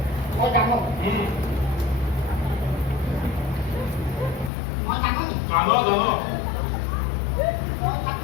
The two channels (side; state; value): right; drops out; at 4.5 s